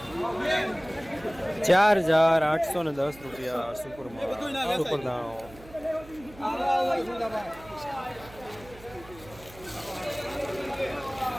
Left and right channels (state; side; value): noise; right; hum, 20 dB below the sound